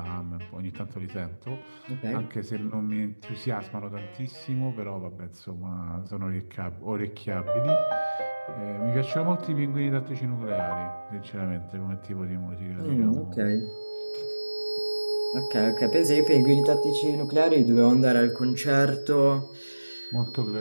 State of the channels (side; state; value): both; inverted; correlation -1.00